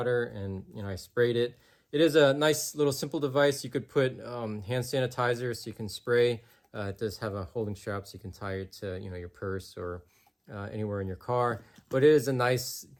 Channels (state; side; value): identical; both; correlation 1.00